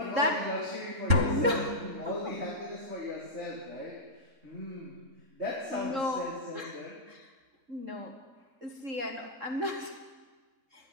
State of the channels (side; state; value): left; late; 3.7 ms